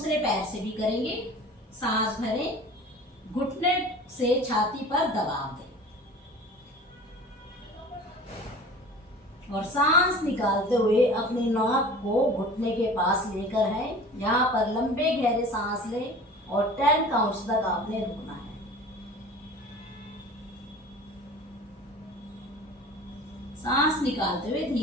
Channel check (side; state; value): both; normal; correlation 0.41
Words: पैर से भी करेंगे। सांस भरें, घुटने से छाती पर दबाव दें और सांस निकालते हुए अपनी नाक को घुटने के पास लेकर है। यहाँ पर लंबे गहरे सांस लें और 10 काउंट्स तक आपने रुकना है। सांस निकालते हुए